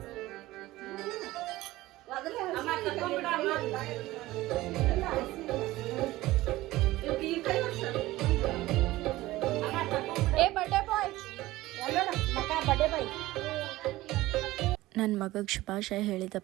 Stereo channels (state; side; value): quieter; left; 17.6 dB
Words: ನನ್ನ ಮಗಗೆ ಶುಭಾಶಯ ಹೇಳಿದ